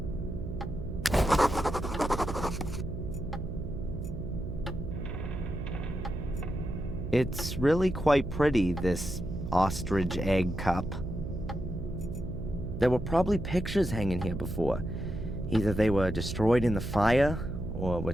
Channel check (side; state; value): right; noise; hum, 7 dB below the sound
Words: It's really quite pretty, this ostrich egg cup. There were probably pictures hanging here before. Either they were destroyed in the fire, or were